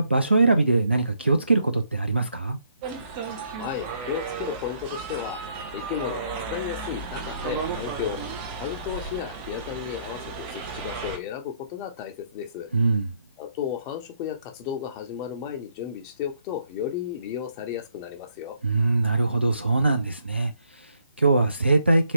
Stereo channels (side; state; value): both; inverted; correlation -0.70